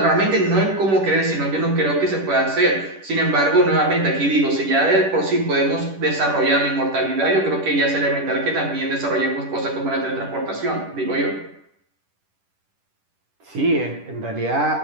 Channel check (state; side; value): late; left; 10 ms